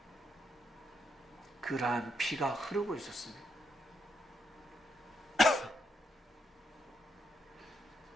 그러한 피가 흐르고 있었습니다.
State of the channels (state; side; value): normal; both; correlation 0.79